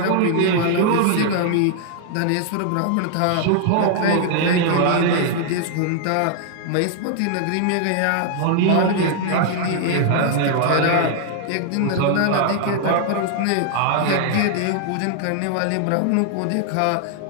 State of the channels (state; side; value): different; both; correlation 0.00